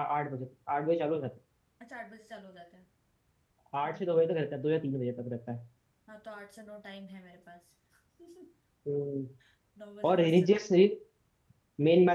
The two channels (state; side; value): identical; both; correlation 1.00